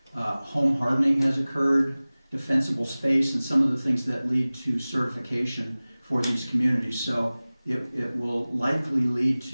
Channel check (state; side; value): inverted; both; correlation -0.99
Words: home hardening has occurred, defensible space, and some of the things that lead to certification for these communities. So it will likely lead